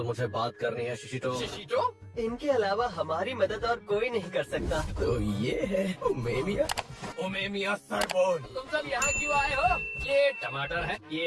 मुझे बात करनी है शिशिटो। शिशिटो? इनके अलावा हमारी मदद और कोई नहीं कर सकता। तो ये है ओमे मिया। ओमे मिया सरबोन। तुम सब यहाँ क्यों आए हो? ये टमाटर है,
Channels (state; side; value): identical; both; correlation 1.00